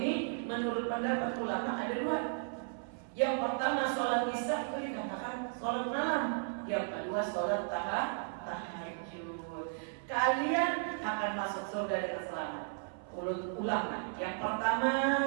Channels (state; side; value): silent; left; 54 dB below the other